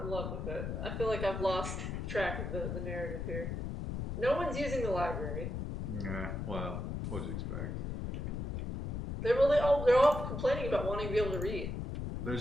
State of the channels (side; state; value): left; noise; rumble, 3 dB below the sound